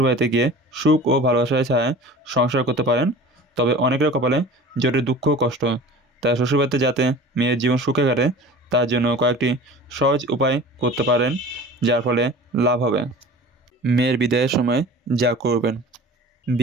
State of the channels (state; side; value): normal; both; correlation 0.40